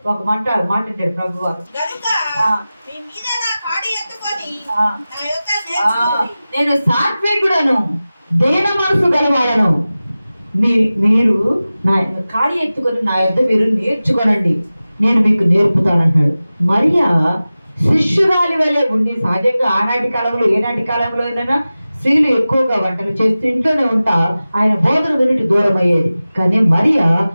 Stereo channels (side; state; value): both; inverted; correlation -0.96